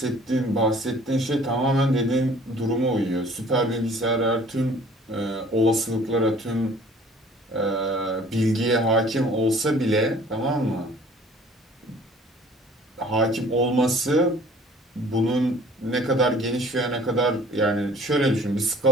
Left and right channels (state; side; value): normal; both; correlation 0.52